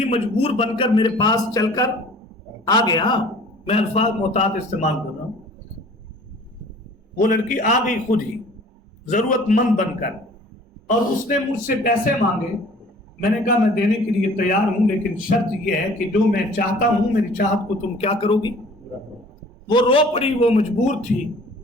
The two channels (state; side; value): normal; both; correlation 0.49